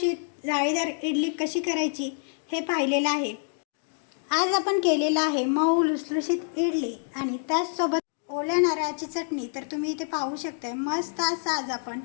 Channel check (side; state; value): right; silent; digital silence